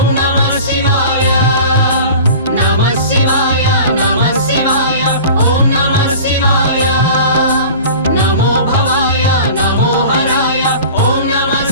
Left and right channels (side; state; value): both; inverted; correlation -0.40